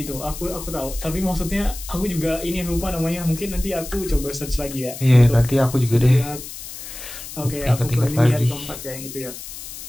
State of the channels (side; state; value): left; noise; hiss, 11 dB below the sound